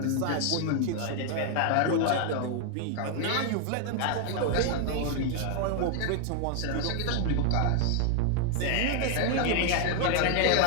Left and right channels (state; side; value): different; both; correlation 0.00